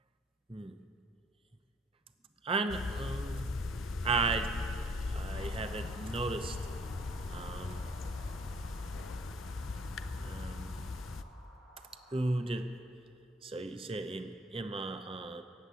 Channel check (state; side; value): normal; both; correlation 0.60